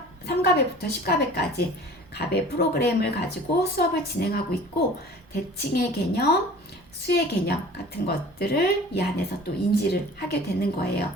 10가베까지 가베 프로그램을 가지고 수업을 진행하고 있고 대칭의 개념, 수의 개념 같은 것들을 이 안에서 또 인지를 하게 되는 거예요.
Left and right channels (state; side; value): normal; both; correlation 0.45